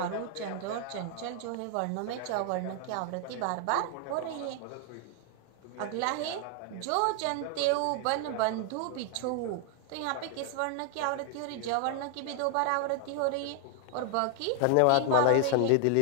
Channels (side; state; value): both; different; correlation 0.00